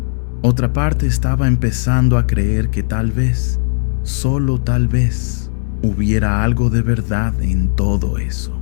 estaba empezando a creer que tal vez, solo tal vez, hubiera algo de verdad en todo eso.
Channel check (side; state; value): right; silent; digital silence